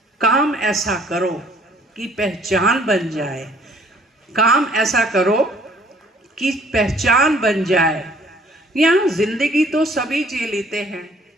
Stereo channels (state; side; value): normal; both; correlation 0.58